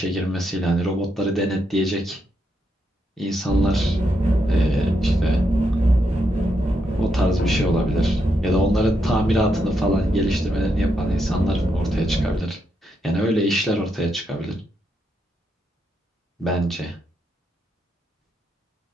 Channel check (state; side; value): normal; both; correlation 0.81